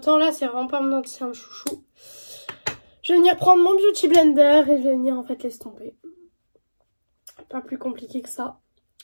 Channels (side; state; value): both; inverted; correlation -1.00